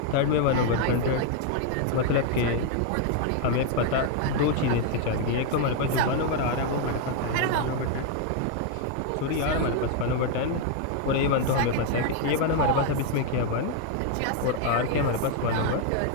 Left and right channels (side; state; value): both; different; correlation 0.00